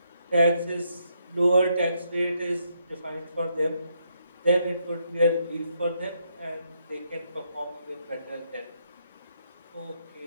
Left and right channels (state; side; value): inverted; both; correlation -0.77